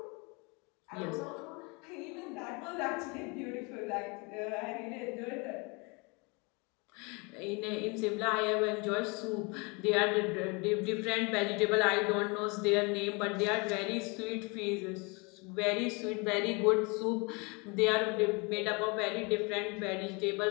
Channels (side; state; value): right; quieter; 29.8 dB